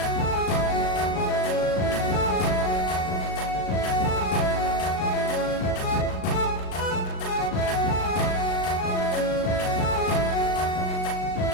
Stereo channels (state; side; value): late; right; 38 ms